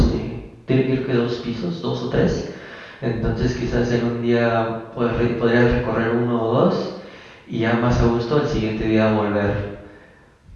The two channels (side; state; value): both; identical; correlation 1.00